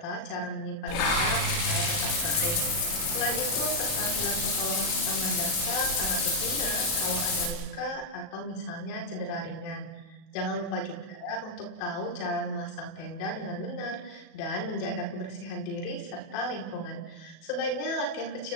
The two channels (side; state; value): right; late; 37 ms